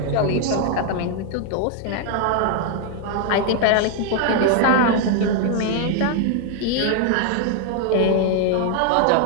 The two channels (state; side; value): different; both; correlation 0.00